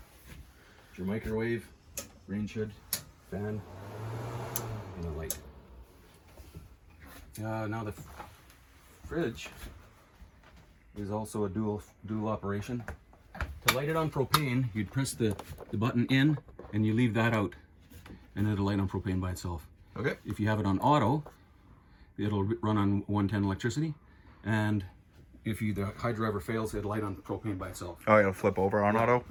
Your microwave, range hood, fan, and a light. Now the fridge is also a dual operation. To light it on propane, you'd press the button in and you leave that out, and it'll light on propane by itself. Okay. If you have it on auto, it'll run on 110 electricity, and if the hydro ever fails, it'll light on propane by itself. Oh, it'll flip over on auto?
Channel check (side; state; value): both; identical; correlation 1.00